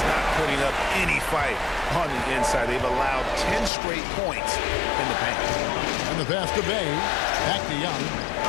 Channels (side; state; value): right; drops out; at 3.7 s